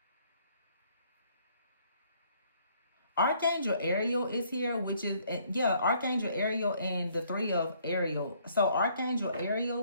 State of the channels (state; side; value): inverted; both; correlation -0.65